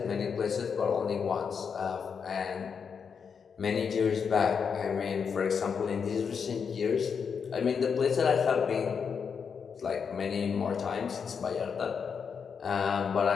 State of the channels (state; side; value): quieter; right; 6.4 dB